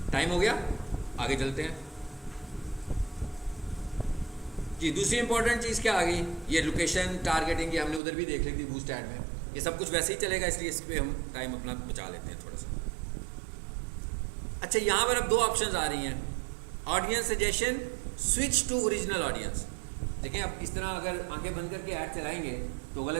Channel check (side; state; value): left; drops out; at 8.0 s